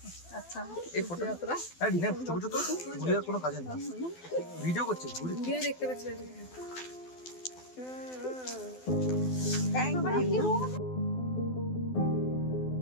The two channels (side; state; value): right; late; 12 ms